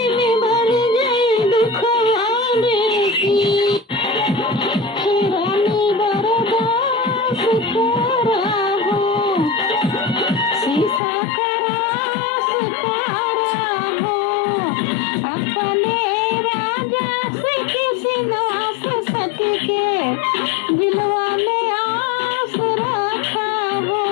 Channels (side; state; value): right; drops out; at 11.0 s